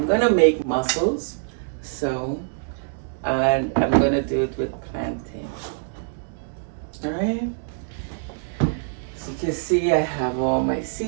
gonna make mussels, and I'm gonna do it with plantain. Alright, so you can see I have all my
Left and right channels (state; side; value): silent; left; 62 dB below the other